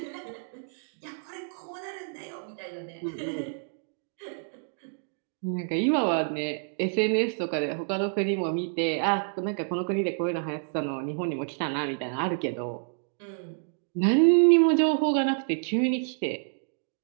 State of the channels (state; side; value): silent; left; digital silence